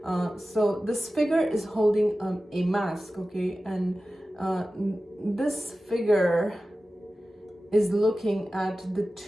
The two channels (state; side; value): normal; both; correlation 0.95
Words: So this figure is holding a mask, okay? And this figure is looking at the